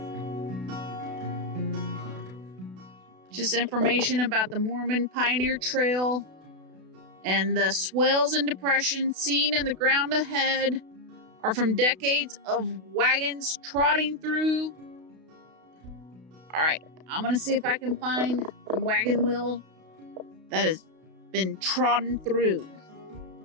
Just information about the Mormon Pioneer Trail and the swells and depressions seen in the ground ahead are from decades of wagons trotting through. All right, I'm gonna see if I can find a wagon wheel that has been trodden through.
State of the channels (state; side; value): late; left; 32 ms